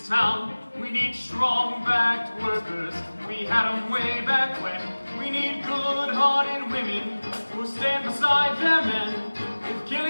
town. We need strong-backed workers. We had 'em way back when. We need good-hearted women who stand beside their men. If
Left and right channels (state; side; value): inverted; both; correlation -1.00